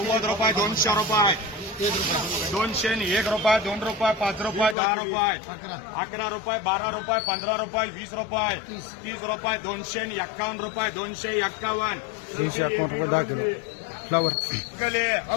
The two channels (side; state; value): right; drops out; at 4.8 s